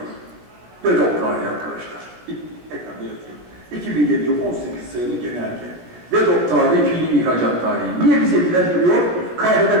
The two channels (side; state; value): left; late; 16 ms